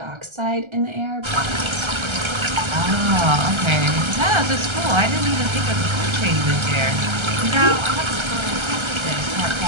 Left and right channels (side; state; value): left; late; 1.3 ms